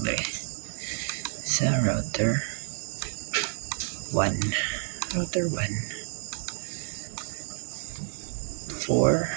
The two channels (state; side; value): silent; left; 58 dB below the other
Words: dahil. Sa router 1. Router 1.